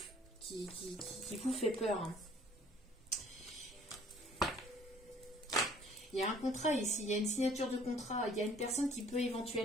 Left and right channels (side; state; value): both; normal; correlation 0.56